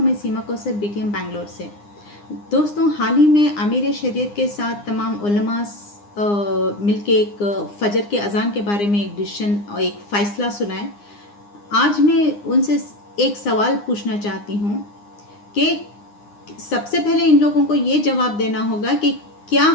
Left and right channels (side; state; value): right; late; 9.8 ms